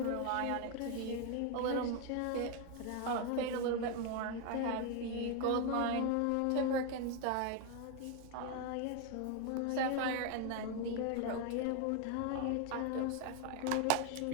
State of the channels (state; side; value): different; both; correlation 0.01